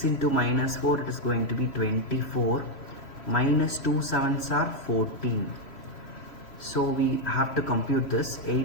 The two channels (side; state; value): right; late; 3.1 ms